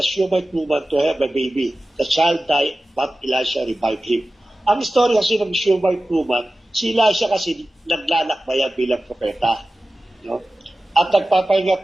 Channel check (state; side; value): normal; both; correlation 0.95